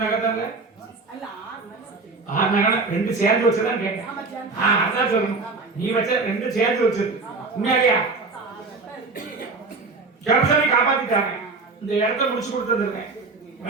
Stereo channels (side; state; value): left; quieter; 3.9 dB